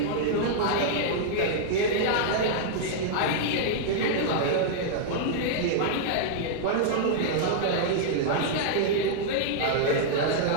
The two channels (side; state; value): both; different; correlation -0.01